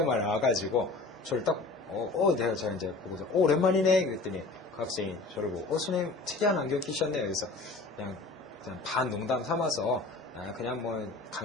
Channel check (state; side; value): quieter; right; 3.5 dB